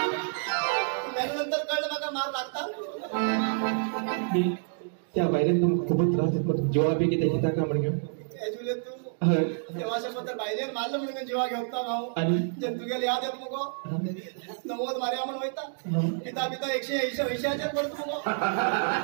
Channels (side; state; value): left; silent; digital silence